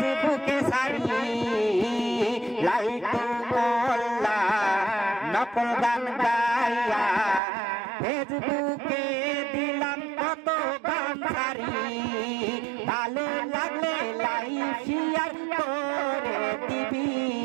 সারি লাইটু মোল্লা নকল গান গাইয়া ফেসবুকে দিলাম কত গান সারি ভালো লাগলে লাইভ শেয়ার করে দিবি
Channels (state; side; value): drops out; left; at 7.4 s